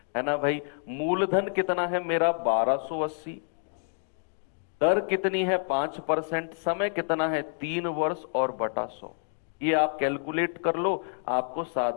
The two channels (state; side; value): silent; right; 57 dB below the other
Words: ना भाई। मूलधन कितना है मेरा 1280, दर कितनी है 5%, समय कितना है 3 वर्ष और बटा 100। ये आप कैलकुलेट कर लो, आपको